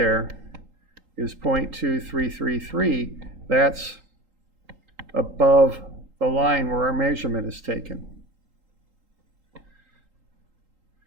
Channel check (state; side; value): late; left; 3.8 ms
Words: is 0.2333. That's above the line where our measurement is taken.